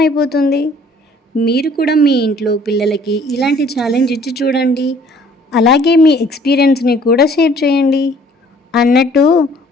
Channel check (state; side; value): normal; both; correlation 0.56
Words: మీరు కూడా మీ ఇంట్లో పిల్లలకి ఇలాంటి ఛాలెంజ్ ఇచ్చి చూడండి. అలాగే మీ ఎక్స్పీరియన్స్ని కూడా షేర్ చేయండి. అన్నట్టు